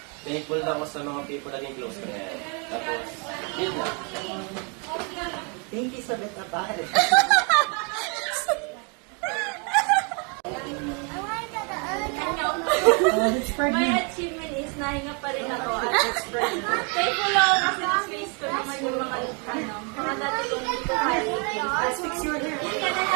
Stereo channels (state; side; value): quieter; left; 35.6 dB